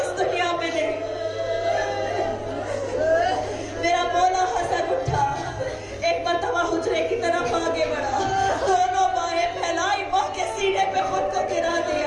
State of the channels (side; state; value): both; identical; correlation 1.00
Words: دنیا میں نہیں۔ میرا مولا حسن اٹھا، ایک مرتبہ حجرے کی طرف آگے بڑھا، دونوں بائیں پھیلائی، ماں کے سینے پہ خود کو گرا